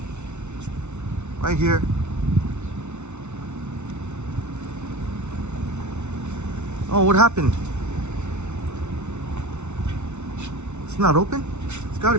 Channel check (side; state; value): left; late; 0.82 ms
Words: Right here. Oh, what happened? It's not open? It's got to